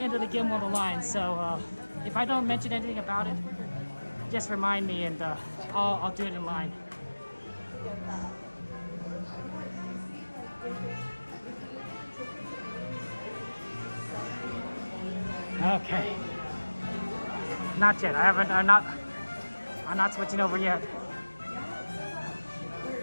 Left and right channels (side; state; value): both; inverted; correlation -1.00